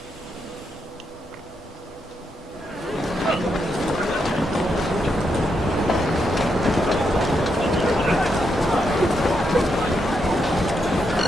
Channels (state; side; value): normal; both; correlation 0.81